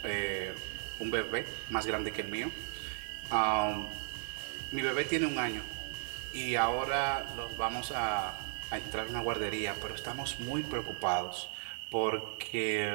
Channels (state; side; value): silent; left; digital silence